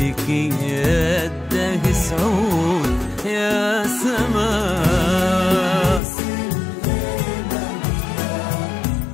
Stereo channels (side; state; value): right; drops out; at 6.0 s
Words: يده سعود يا سما.